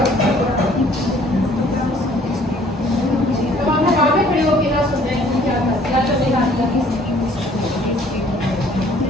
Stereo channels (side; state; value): both; normal; correlation 0.57